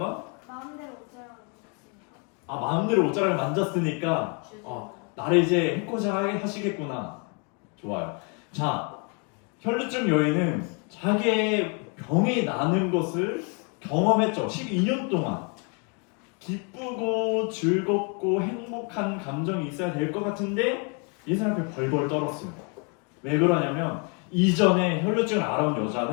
마음대로 옷자락을 입었으니까. 마음대로 옷자락을 만졌으니까 나를 이제 해코지 하시겠구나. 좋아요. 자, 혈루증 여인은 자기의 병이 나는 것을 경험했죠. 12년 동안. 기쁘고 즐겁고 행복한 감정이 있어야 될 것 같은데 이 사람 앞에 벌벌 떨었어요. 왜 그러냐면 이전에 혈루증을 앓아온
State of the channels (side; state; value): right; quieter; 35.3 dB